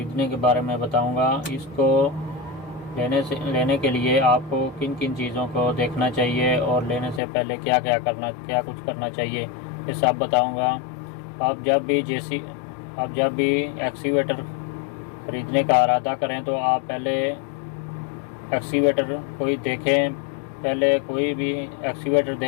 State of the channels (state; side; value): drops out; right; at 7.2 s